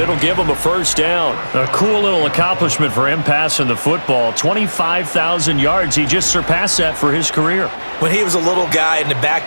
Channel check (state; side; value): inverted; both; correlation -1.00